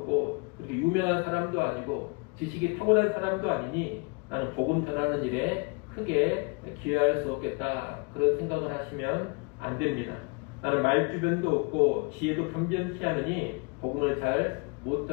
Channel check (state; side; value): quieter; right; 30.5 dB